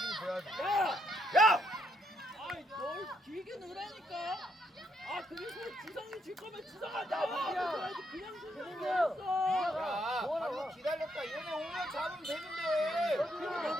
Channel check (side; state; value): both; normal; correlation 0.75